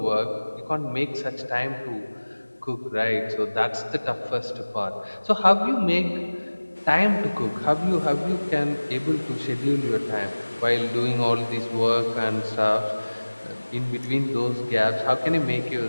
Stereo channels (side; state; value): both; inverted; correlation -1.00